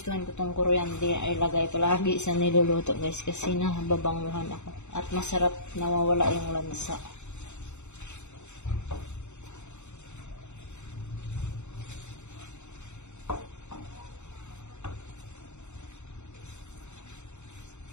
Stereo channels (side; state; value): right; late; 0.83 ms